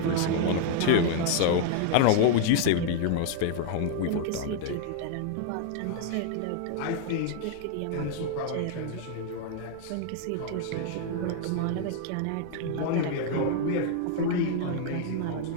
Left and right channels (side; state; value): both; different; correlation 0.00